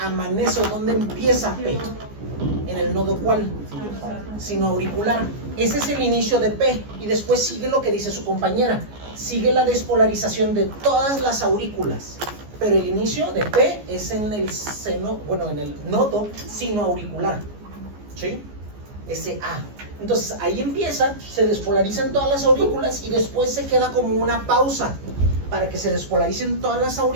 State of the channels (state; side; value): late; left; 14 ms